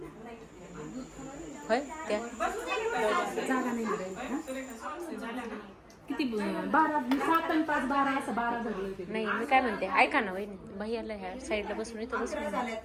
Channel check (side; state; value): both; identical; correlation 1.00